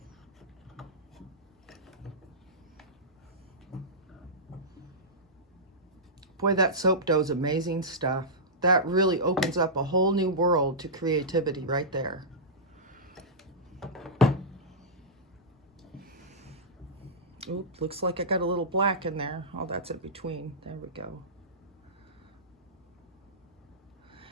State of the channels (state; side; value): normal; both; correlation -0.14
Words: Boy, that soap dough is amazing stuff. That really opens up a whole new world to creativity right there. Oop, looks like I got a little black in there. Oh, that's in between. There we go.